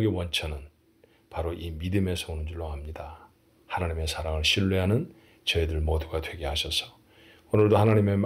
원천은 바로 이 믿음에서 오는 줄로 압니다. 하나님의 사랑을 신뢰하는 저희들 모두가 되게 하셔서 오늘도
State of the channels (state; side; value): identical; both; correlation 1.00